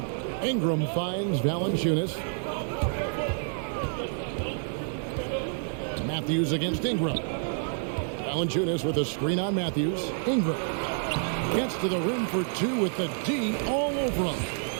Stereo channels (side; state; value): left; silent; 59 dB below the other